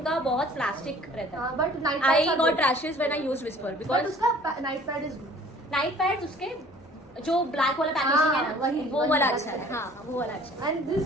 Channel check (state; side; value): normal; both; correlation 0.52